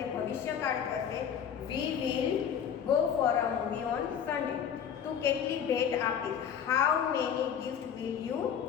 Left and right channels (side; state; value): right; quieter; 8.2 dB